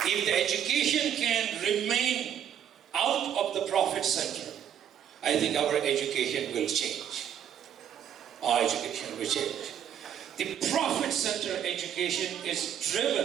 If the education can remain out of the profit center, I think our education will change. Our education will change. The profit center education is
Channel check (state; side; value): quieter; left; 9.3 dB